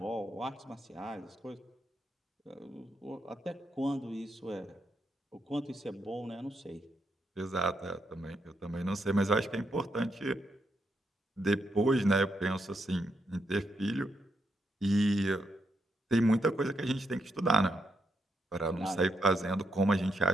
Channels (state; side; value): normal; both; correlation 0.80